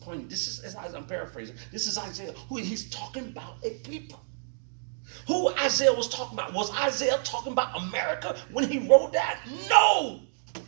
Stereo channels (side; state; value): left; silent; digital silence